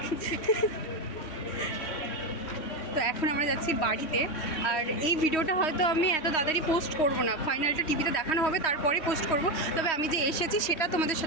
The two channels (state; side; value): late; right; 3.1 ms